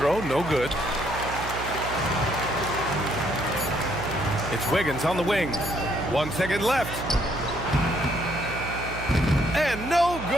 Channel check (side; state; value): right; noise; hum, 9 dB below the sound